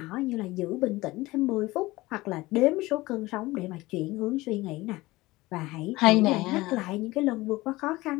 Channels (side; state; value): right; quieter; 19.8 dB